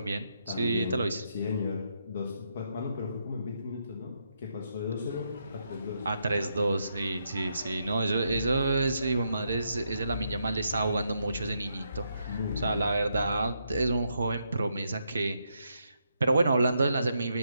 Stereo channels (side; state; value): both; inverted; correlation -0.80